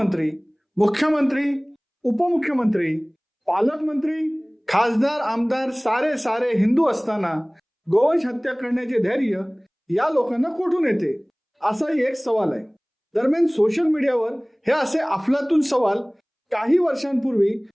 मुख्यमंत्री, उपमुख्यमंत्री, पालकमंत्री, खासदार, आमदार सारे हिंदू असताना गोवंश हत्या करण्याचे धैर्य या लोकांना कुठून येते, असाही एक सवाल आहे. दरम्यान सोशल मीडियावर हे असे अफलातून सवाल काही वर्षांपूर्वी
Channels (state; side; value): identical; both; correlation 1.00